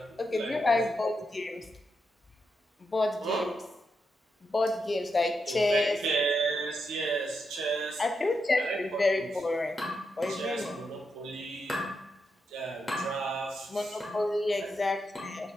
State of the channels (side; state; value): both; normal; correlation 0.84